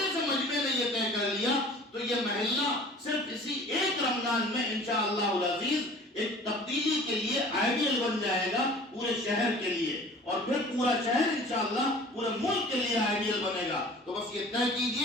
سے مجمع میں یہ طے کر لیا تو یہ محلہ صرف اسی ایک رمضان میں انشاءاللہ العزیز ایک تبدیلی کے لیے آئیڈیل بن جائے گا پورے شہر کے لیے، اور پھر پورا شہر انشاءاللہ پورے ملک کے لیے آئیڈیل بنے گا. تو بس یہ طے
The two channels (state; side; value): normal; both; correlation 0.46